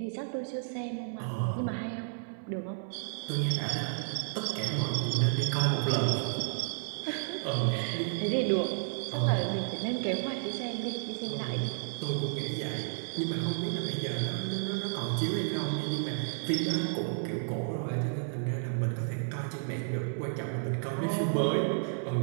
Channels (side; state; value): left; silent; 56 dB below the other